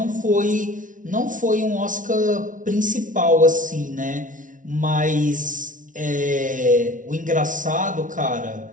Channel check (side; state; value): left; late; 0.38 ms